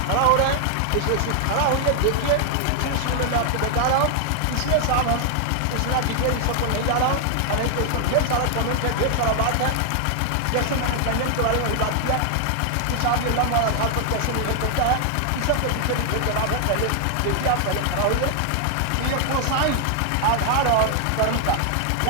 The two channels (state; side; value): different; both; correlation 0.00